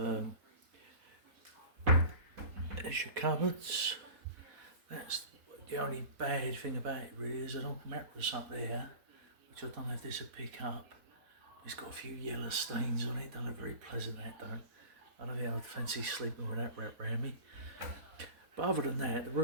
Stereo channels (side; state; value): left; late; 4.1 ms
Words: There's your cupboards. That's the only bad thing about it really. There's an old mattress up there, which I don't know if this will pick up. It's got a few yellow stains on it. Don't look very pleasant, that don't. I don't think I'd fancy sleeping with that wrapped around me. But other than that, the